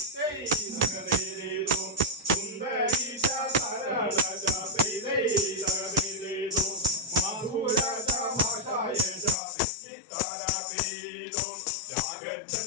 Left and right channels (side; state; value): right; drops out; at 9.3 s